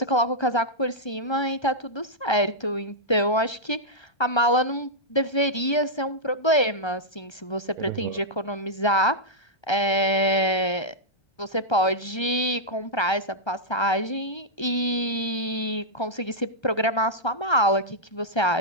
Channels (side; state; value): right; late; 1.3 ms